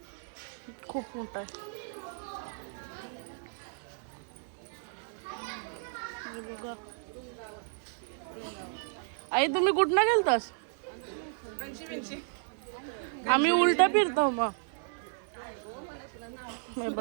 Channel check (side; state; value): left; silent; digital silence